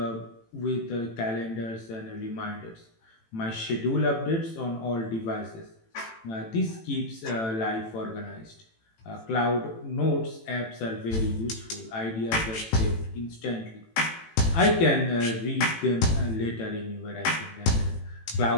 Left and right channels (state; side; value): late; right; 18 ms